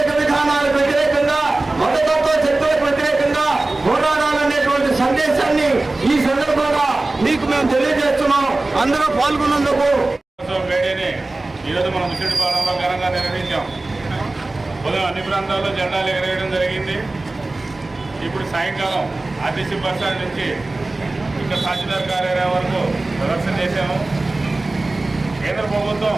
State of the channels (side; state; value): left; quieter; 3.0 dB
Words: విధానాలకు వ్యతిరేకంగా మతతత్వ శక్తులకు వ్యతిరేకంగా పోరాడాలనేటువంటి సందేశాన్ని ఈ సందర్భంగా మీకు మేము తెలియజేస్తున్నాం. అందరూ పాల్గొన్నందుకు మేడేని ఈరోజు మనం ముసిడిపాలెంలో ఘనంగా నిర్వహించాం. ఉదయం అన్ని ప్రాంతాల్లో జెండాలు ఎగరేయడం జరిగింది. ఇప్పుడు సాయంకాలం ఆర్టీసీ బస్ స్టాండ్ నుంచి ఇంకా తహసీల్దార్ కార్యాలయం వరకు ప్రదర్శన చేశాము. కేంద్ర ప్రభుత్వం